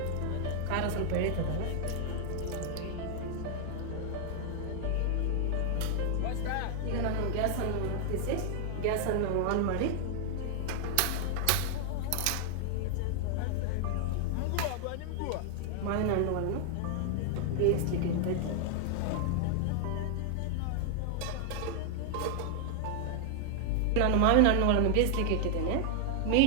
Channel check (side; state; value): both; different; correlation 0.00